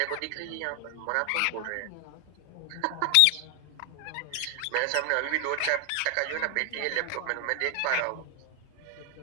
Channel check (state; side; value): different; both; correlation 0.00